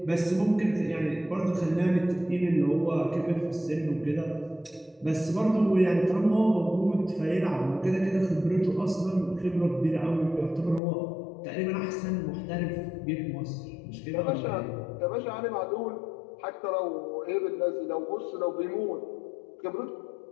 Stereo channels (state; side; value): drops out; right; at 10.8 s